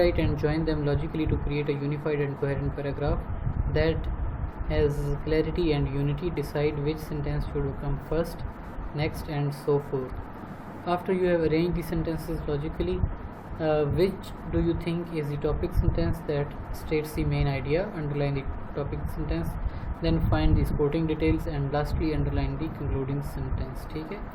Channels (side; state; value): both; identical; correlation 1.00